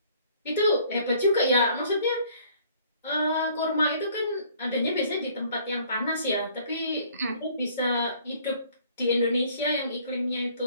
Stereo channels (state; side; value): inverted; both; correlation -0.58